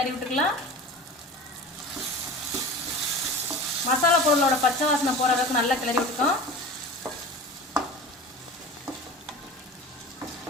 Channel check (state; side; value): normal; both; correlation 0.35